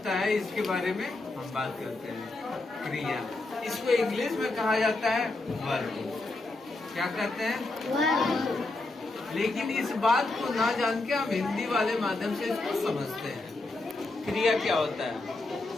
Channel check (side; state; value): right; quieter; 3.1 dB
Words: है इसके बारे में हम बात करते हैं। क्रिया, इसको इंग्लिश में कहा जाता है वर्ब। क्या कहते हैं? वर्ब। लेकिन इस बात को ना जान के हम हिंदी वाले माध्यम से इसको समझते हैं। क्रिया क्या होता है?